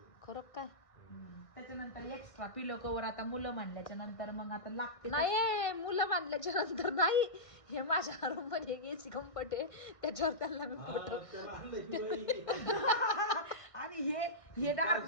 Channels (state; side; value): late; right; 1.6 ms